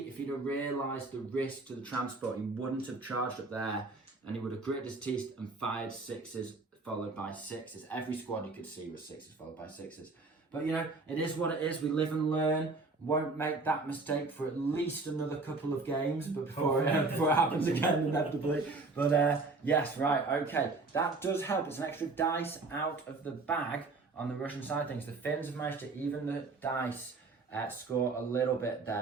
if he'd have realised the risk to the transport, he wouldn't have charged up there, and he would have gritted his teeth and fired 6s followed by 6s. Every squad you could see was 6s followed by 6s. But you know, it is what it is. We live and learn. Won't make that mistake for at least another couple of games, but before it happens again inevitably. But yes, right, okay. That does help. It's an extra dice out of the bag on the Russian side of things. The Finns have managed to even the dice score a little bit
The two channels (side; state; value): left; quieter; 3.7 dB